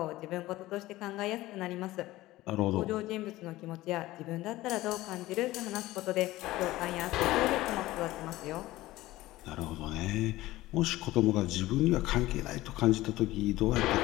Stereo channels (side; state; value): right; quieter; 17.3 dB